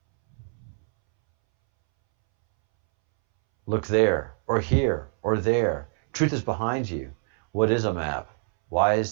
Look there, or here, or there. Truth is behind you. What is a map? Why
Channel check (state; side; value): silent; left; 62 dB below the other